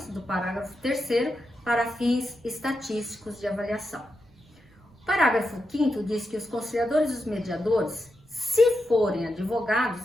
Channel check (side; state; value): right; noise; rumble, 29 dB below the sound